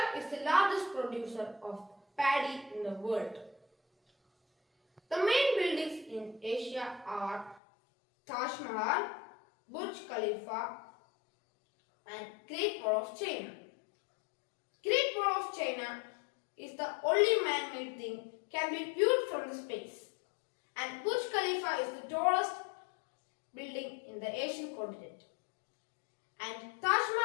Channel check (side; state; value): right; drops out; at 7.6 s